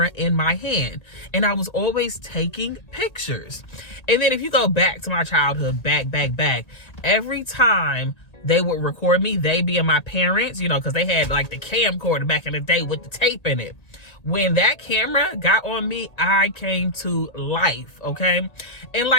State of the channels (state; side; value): late; right; 1.8 ms